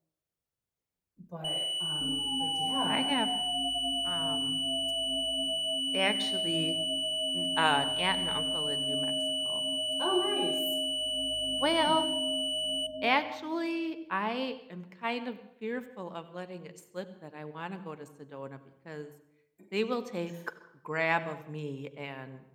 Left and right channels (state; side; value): identical; both; correlation 1.00